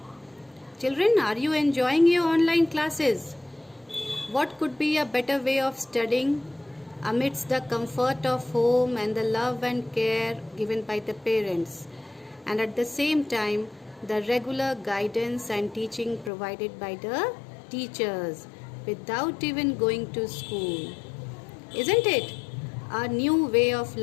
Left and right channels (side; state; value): right; drops out; at 16.3 s